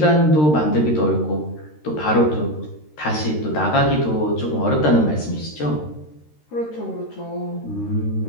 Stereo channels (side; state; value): right; late; 13 ms